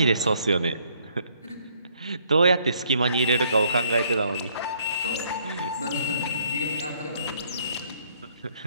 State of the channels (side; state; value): both; inverted; correlation -0.66